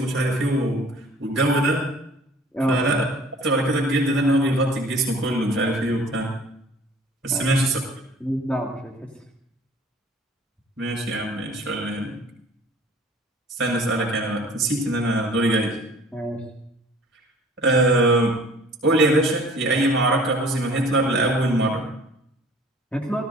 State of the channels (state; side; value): normal; both; correlation 0.50